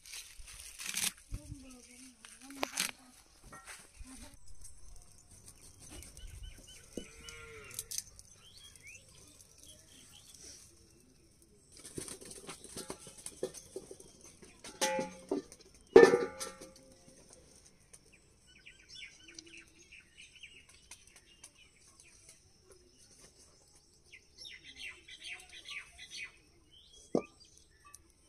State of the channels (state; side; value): identical; both; correlation 1.00